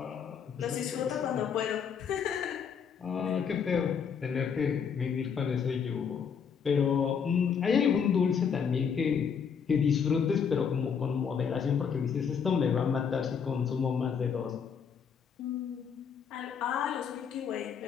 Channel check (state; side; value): quieter; right; 6.9 dB